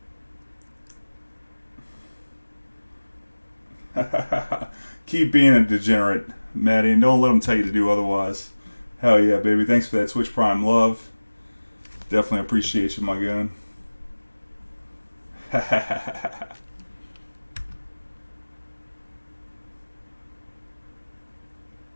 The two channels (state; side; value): inverted; both; correlation -1.00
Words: Keep being a degenerate, Maddie, and don't let them tell you to do otherwise. Hell yeah, baby. Thanks for that Twitch Prime love. Definitely appreciate you, my gun.